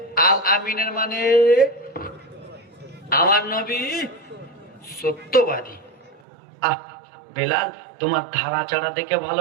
আল আমিনের মানে আমার নবী সত্যবাদী। আহ বেলাল, তোমার ধারা চাড়া দেখে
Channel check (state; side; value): drops out; left; at 6.2 s